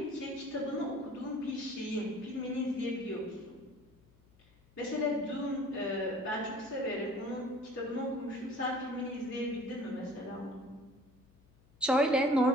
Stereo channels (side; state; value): left; noise; hum, 29 dB below the sound